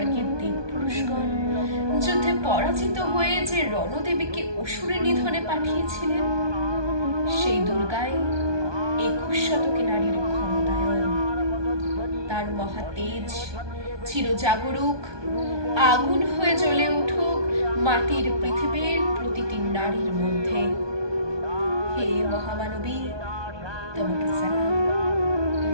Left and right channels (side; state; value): left; late; 1.2 ms